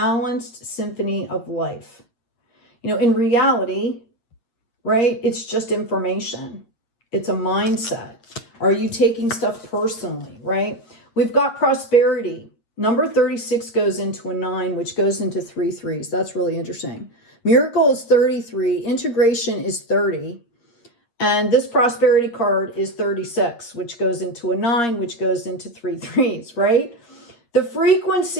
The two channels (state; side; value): late; right; 8.5 ms